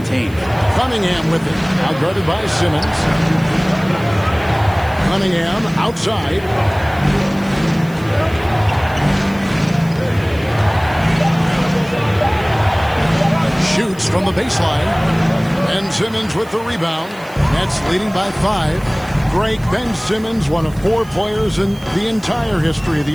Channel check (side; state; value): right; noise; hiss, 24 dB below the sound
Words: Cunningham with it. Out guarded by Simmons. Cunningham outside. Shoots from the baseline. And Simmons with the rebound. Nets leading by 5. Greg Ben Simmons, one of 4 players in the entire history of